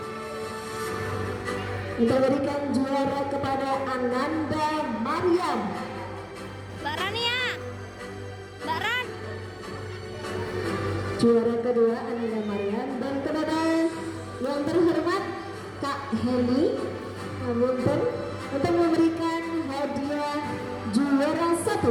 untuk memberikan juara kepada Ananda Maryam. Mbak Rania. Mbak Ran. Juara kedua Ananda Maryam, dan kepada yang terhormat Kak Heli Munten untuk memberikan hadiah juara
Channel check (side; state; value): both; identical; correlation 1.00